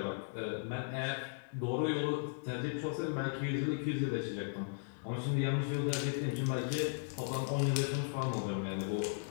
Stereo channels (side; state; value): right; silent; digital silence